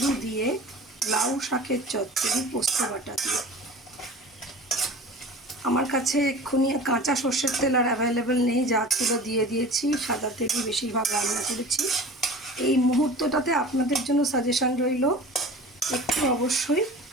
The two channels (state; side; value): normal; both; correlation 0.39